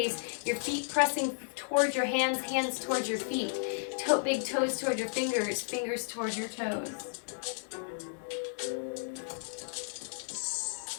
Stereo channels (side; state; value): right; silent; digital silence